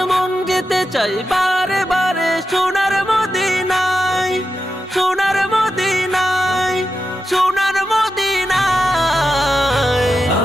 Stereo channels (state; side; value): normal; both; correlation 0.89